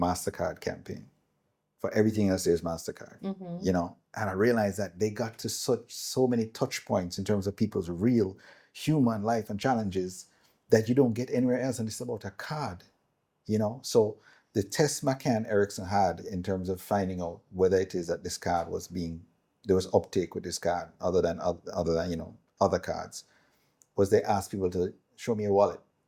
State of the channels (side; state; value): both; identical; correlation 1.00